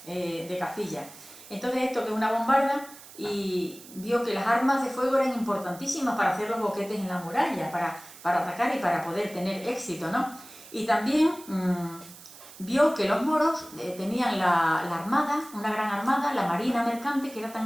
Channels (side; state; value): right; noise; hiss, 18 dB below the sound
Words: de Castilla. Entonces esto que es una bombarda, y vio que las armas de fuego eran importantísimas para hacer los boquetes en la muralla, para atacar y para poder tener éxito, ¿no? Y también vio que los moros tenían la armada, una gran armada, la marina mercante, que era